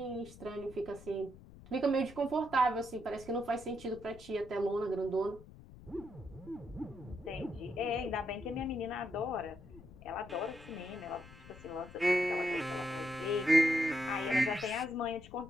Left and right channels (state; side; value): noise; left; rumble, 18 dB below the sound